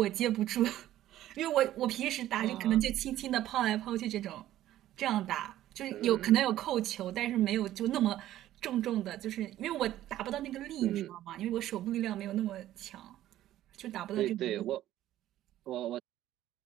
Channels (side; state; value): left; quieter; 13.4 dB